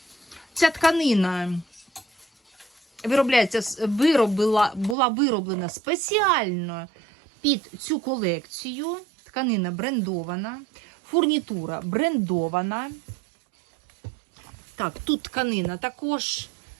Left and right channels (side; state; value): left; drops out; at 5.0 s